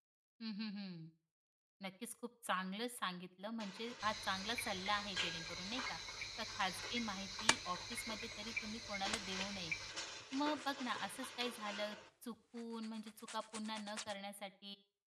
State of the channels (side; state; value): both; identical; correlation 1.00